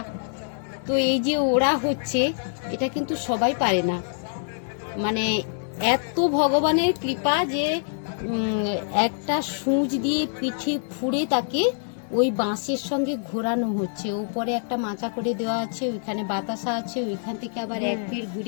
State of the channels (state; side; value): silent; right; 62 dB below the other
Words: তো এই যে ওরা হচ্ছে, এটা কিন্তু সবাই পারে না। মানে এত ভগবানের কৃপা যে একটা সূঁচ দিয়ে পিঠে ফুঁড়ে তাকে ওই বাঁশের সঙ্গে ঘোরানো হচ্ছে। উপরে একটা মাচা করে দেওয়া আছে, ওইখানে বাতাসা আছে, ওইখান থেকে আবার এক ফের